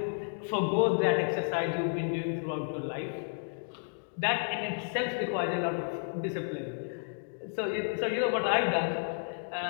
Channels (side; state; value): right; silent; digital silence